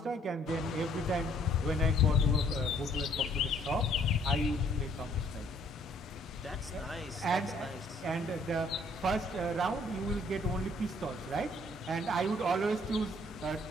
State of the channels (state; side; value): normal; both; correlation 0.62